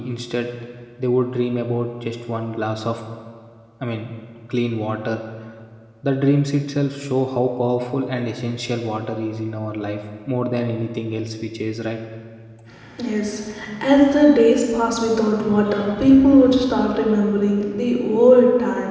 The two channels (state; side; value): identical; both; correlation 1.00